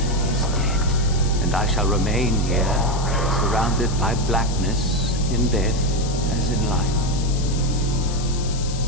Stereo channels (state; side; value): noise; left; hiss, 11 dB below the sound